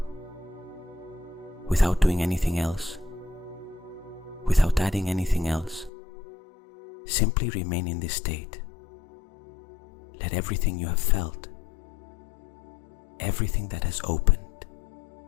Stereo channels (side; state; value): right; drops out; at 5.9 s